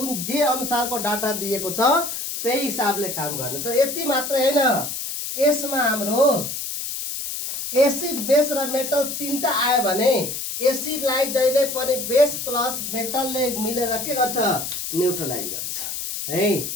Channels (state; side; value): noise; left; hiss, 5 dB below the sound